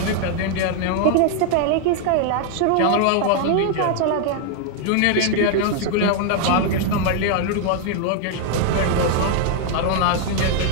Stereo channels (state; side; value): different; both; correlation 0.00